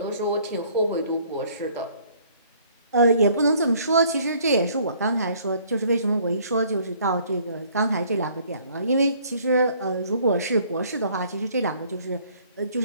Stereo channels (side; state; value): both; inverted; correlation -0.60